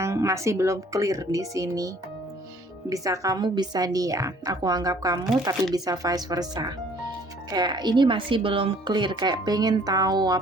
masih belum clear di sini. Bisa kamu, bisa dia. Aku anggap kamu, tapi bisa vice versa. Kayak ini masih belum clear, kayak pengen tahu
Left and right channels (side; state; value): both; normal; correlation 0.57